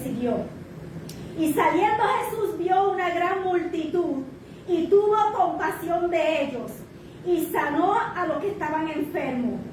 siguió. Y saliendo Jesús vio una gran multitud y tuvo compasión de ellos y sanó a los que estaban enfermos.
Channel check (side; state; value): both; identical; correlation 1.00